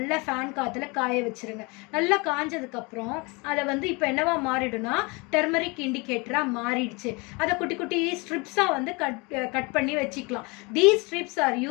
ஃபேன் காற்றுல காய வச்சுருங்க. நல்லா காஞ்சதுக்கப்புறம் அதை வந்து இப்போ என்னவா மாறிடும்னா டர்மரிக் இண்டிகேட்டராக மாறிடுச்சு. அதை குட்டி குட்டி ஸ்ட்ரிப்ஸாக வந்து கட் பண்ணி வச்சுக்கலாம். These strips are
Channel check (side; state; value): right; quieter; 27.9 dB